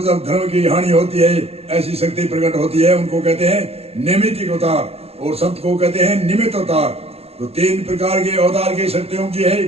जब धर्म की हानि होती है ऐसी शक्ति प्रकट होती है, उनको कहते हैं नैमित्तिक अवतार। और संत को कहते हैं निमित्त अवतार। तो 3 प्रकार के अवतार की शक्तियों की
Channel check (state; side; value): late; left; 0.29 ms